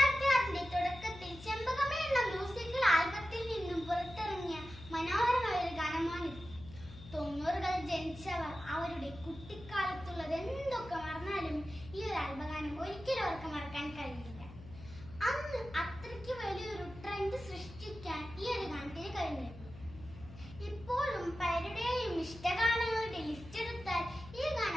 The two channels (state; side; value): noise; left; hum, 16 dB below the sound